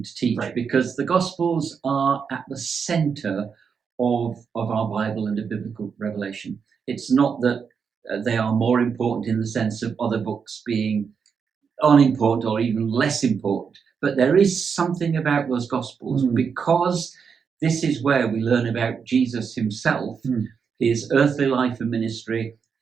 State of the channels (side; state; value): left; quieter; 6.3 dB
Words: to teach, right, because the Gospels are at the centre of our Bible and of biblical revelation. It's not that they are more important in the sense of other books being unimportant or even less important, but there is something about those Gospels because this is where we learn about Jesus himself, his earthly life and ministry,